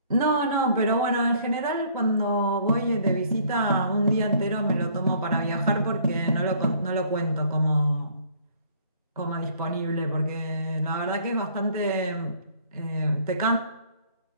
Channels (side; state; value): both; inverted; correlation -0.59